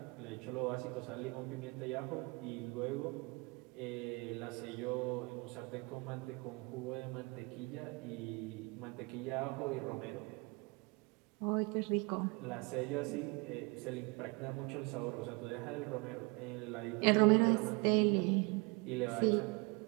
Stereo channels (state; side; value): quieter; left; 28.3 dB